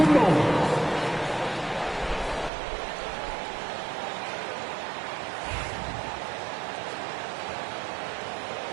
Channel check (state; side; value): drops out; left; at 2.5 s